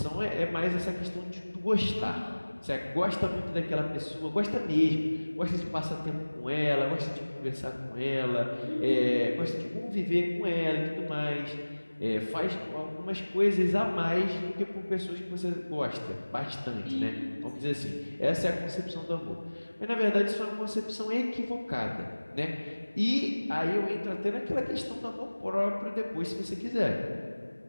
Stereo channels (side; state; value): both; inverted; correlation -1.00